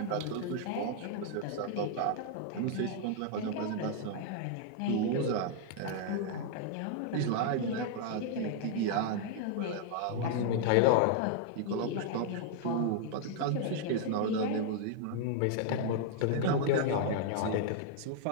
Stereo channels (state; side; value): different; both; correlation -0.01